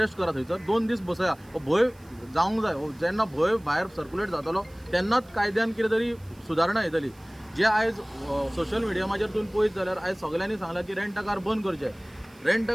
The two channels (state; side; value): noise; right; hiss, 29 dB below the sound